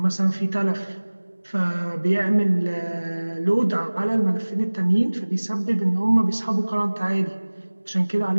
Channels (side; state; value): both; inverted; correlation -1.00